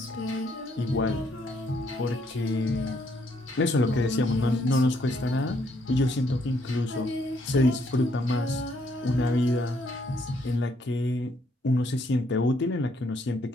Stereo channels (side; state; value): both; normal; correlation 0.70